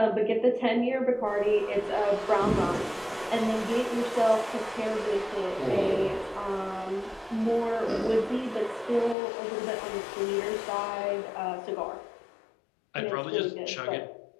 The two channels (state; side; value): drops out; right; at 9.2 s